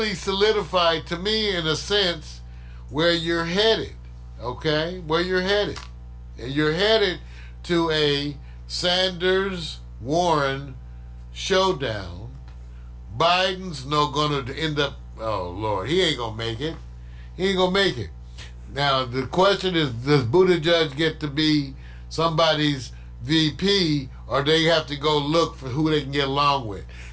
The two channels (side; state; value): both; identical; correlation 1.00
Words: solidified to me, in a sense, where you're headed, okay? Where you're headed. And you're headed to a Sanders-Warren showdown. Biden's not going to end up, oh, Lord, he ain't going to make it. He ain't going to make it. Now, the question is, does Buttigieg get to be somebody's VP, or they have to go look for who they can get along with?